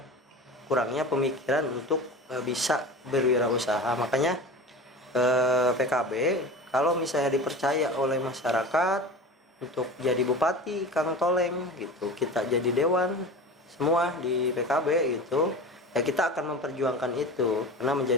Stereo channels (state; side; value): normal; both; correlation 0.33